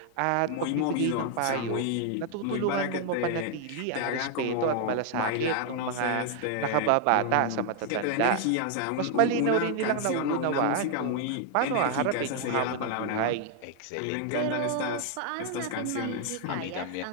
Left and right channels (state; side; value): different; both; correlation 0.00